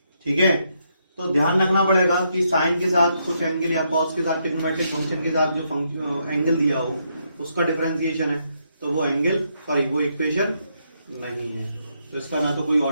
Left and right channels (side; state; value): both; inverted; correlation -0.77